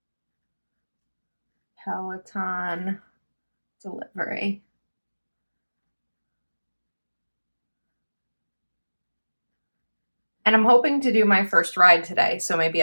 Peloton delivery. And I'm hoping to do my first ride today, so maybe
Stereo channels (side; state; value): both; inverted; correlation -1.00